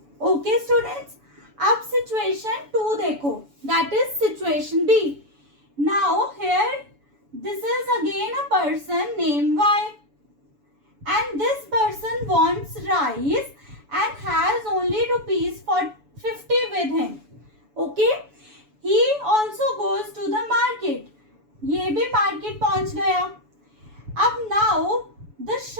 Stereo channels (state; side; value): late; left; 7.0 ms